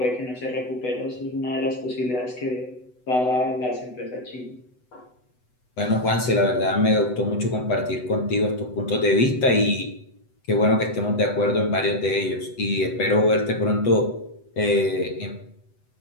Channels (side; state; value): right; late; 8.0 ms